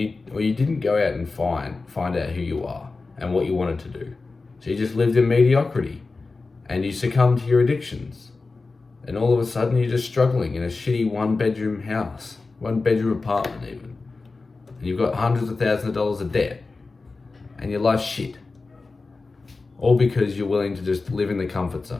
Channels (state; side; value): quieter; right; 3.8 dB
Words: didn't go out and find out who you are and what you wanted to do. So you just lived in mediocrity, and you succumbed to your addictions, and all of a sudden you're just struggling in a shitty 1-bedroom house, 1-bedroom apartment even, and you've got hundreds of thousands of dollars of debt, and your life's shit. All because you're willing to just live in the comfort